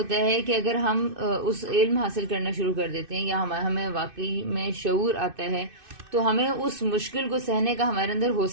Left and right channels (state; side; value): late; left; 2.6 ms